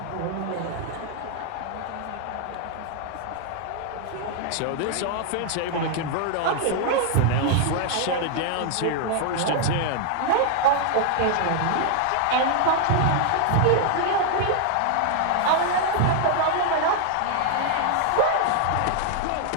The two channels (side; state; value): both; different; correlation 0.00